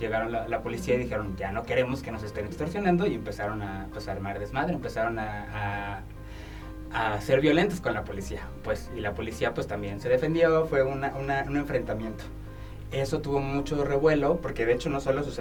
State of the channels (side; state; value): both; identical; correlation 1.00